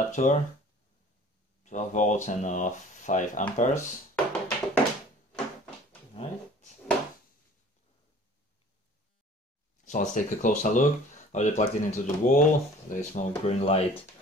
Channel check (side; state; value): both; normal; correlation 0.48